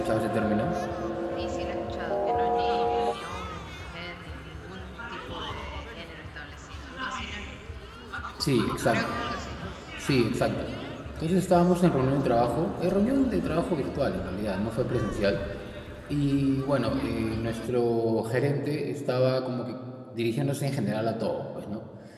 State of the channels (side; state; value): both; identical; correlation 1.00